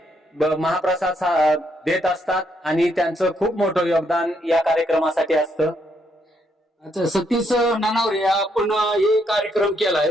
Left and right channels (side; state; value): both; normal; correlation 0.74